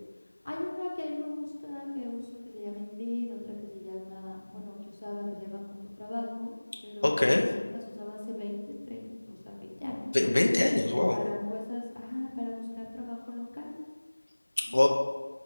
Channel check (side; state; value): both; inverted; correlation -1.00